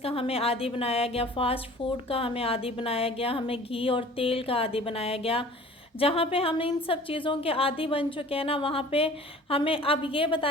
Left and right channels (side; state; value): both; normal; correlation 0.46